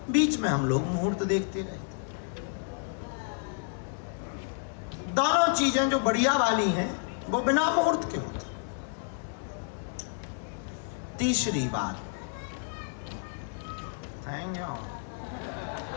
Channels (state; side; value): silent; right; digital silence